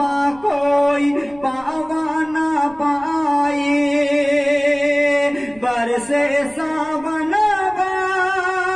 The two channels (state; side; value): noise; right; rumble, 25 dB below the sound